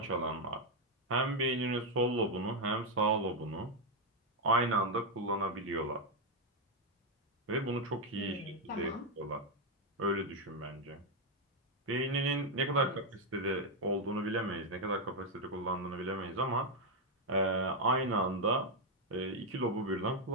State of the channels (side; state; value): both; normal; correlation 0.02